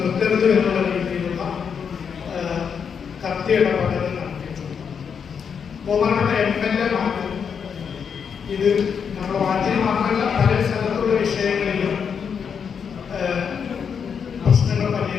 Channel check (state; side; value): quieter; right; 6.8 dB